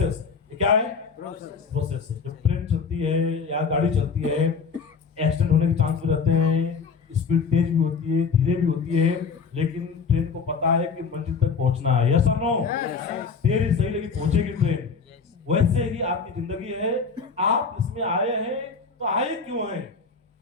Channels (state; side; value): quieter; right; 5.5 dB